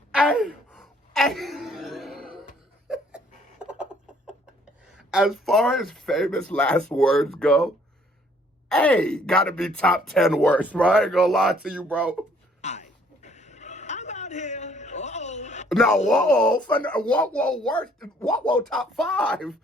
as far as famous last words go, hey, gotta be top 10 worst, bro. I ain't gonna lie to you, bro. I'm out here. Uh-oh. No, whoa, worst, whoa, top 5.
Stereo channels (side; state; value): both; normal; correlation 0.62